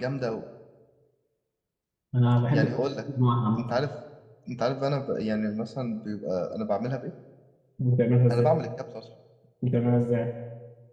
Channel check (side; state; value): both; identical; correlation 1.00